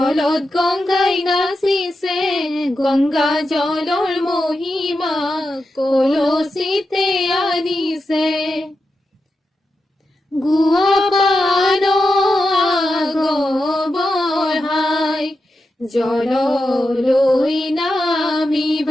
গংগাই নাচিছে গংগা জলৰ মহিমা কলচিতে আনিছে গুৱা পান আগবঢ়াই জললৈ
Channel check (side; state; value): both; normal; correlation 0.89